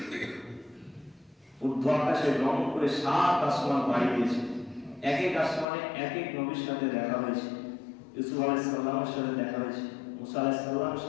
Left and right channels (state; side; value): drops out; right; at 5.7 s